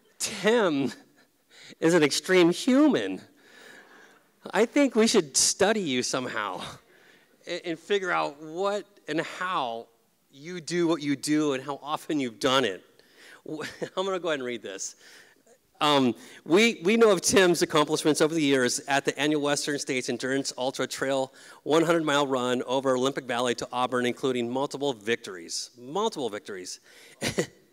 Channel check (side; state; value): both; identical; correlation 1.00